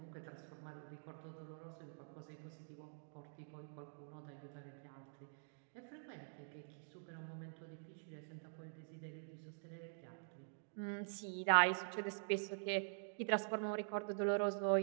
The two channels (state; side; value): silent; left; digital silence